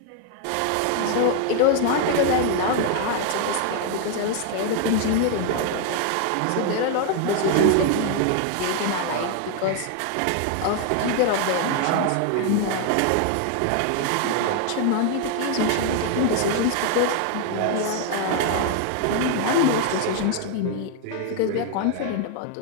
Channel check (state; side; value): different; both; correlation 0.00